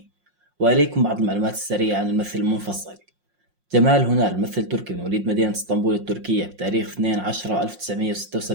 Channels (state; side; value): late; left; 5.6 ms